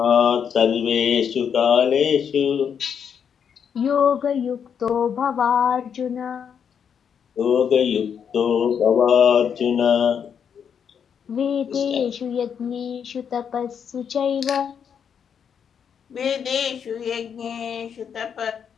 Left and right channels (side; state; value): right; quieter; 7.6 dB